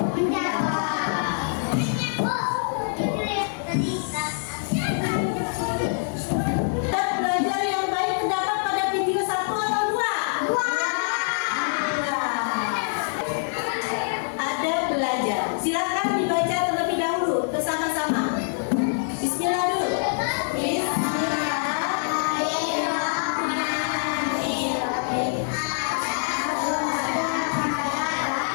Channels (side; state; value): right; silent; digital silence